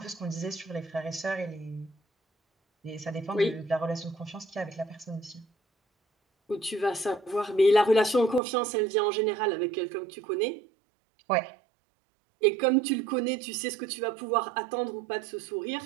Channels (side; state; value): left; drops out; at 8.4 s